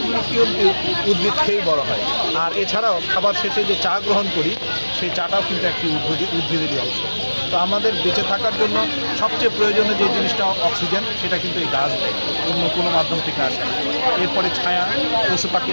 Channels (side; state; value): both; inverted; correlation -1.00